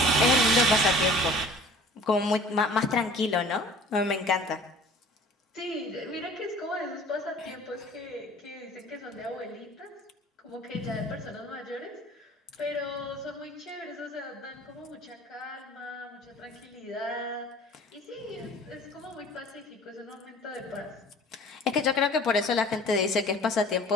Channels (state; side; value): normal; both; correlation 0.47